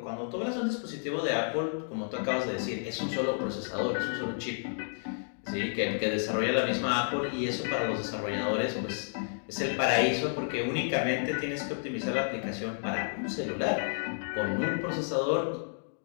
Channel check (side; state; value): right; silent; digital silence